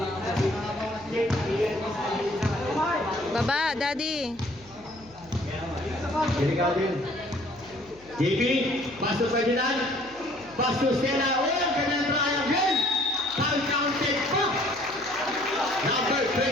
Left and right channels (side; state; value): left; noise; hum, 26 dB below the sound